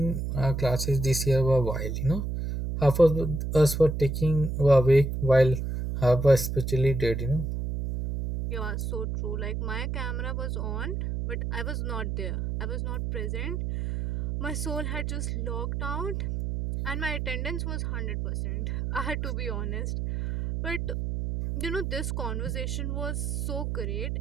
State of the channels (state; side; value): noise; right; hum, 2 dB below the sound